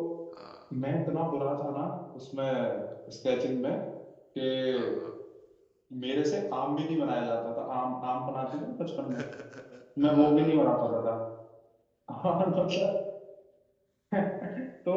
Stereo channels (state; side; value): identical; both; correlation 1.00